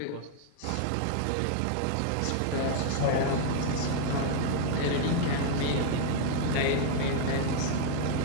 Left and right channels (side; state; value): both; different; correlation 0.00